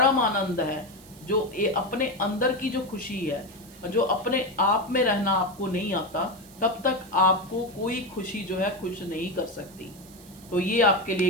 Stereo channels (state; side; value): noise; right; hiss, 22 dB below the sound